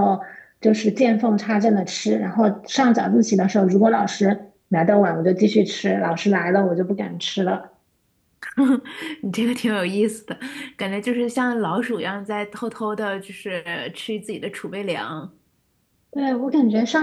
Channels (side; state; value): both; identical; correlation 1.00